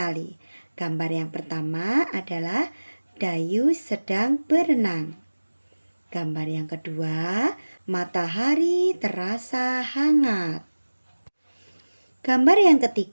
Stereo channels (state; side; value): inverted; both; correlation -1.00